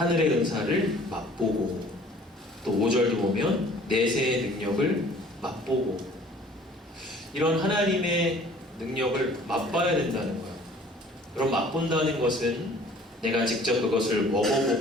은사를 맛보고, 또 5절도 보면 내세의 능력을 맛보고, 이런 하나님의 능력을 맛봐야 된다는 거예요. 그럼 맛본다는 것은 내가 직접 그것을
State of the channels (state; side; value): normal; both; correlation 0.52